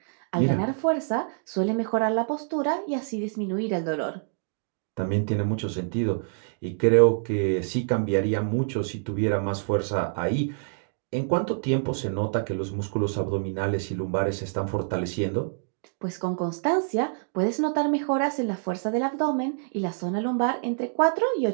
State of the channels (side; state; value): left; silent; digital silence